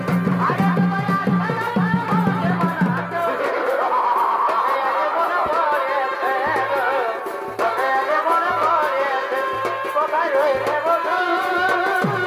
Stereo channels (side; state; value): both; identical; correlation 1.00